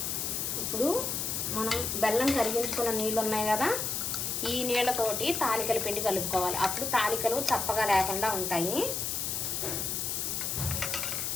ఇప్పుడు మనం బెల్లం కరిగించుకున్న నీళ్ళు ఉన్నాయి కదా, ఈ నీళ్ళతోటి తాలికల పిండి కలుపుకోవాలి. అప్పుడు తాలికలు చప్పగా లేకుండా ఉంటాయి.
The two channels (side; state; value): left; noise; hiss, 1 dB below the sound